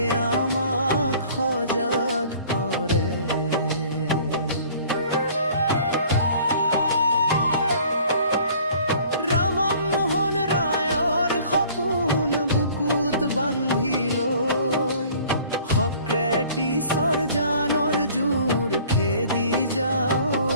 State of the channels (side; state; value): both; inverted; correlation -0.52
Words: আমাক সজাগ কৰে ৰামমোহন ৰায়ৰ সপোন বুকুত বান্ধি লৈ সক্ৰেটিছৰ জানৰ জোৰ খেদি যাওঁ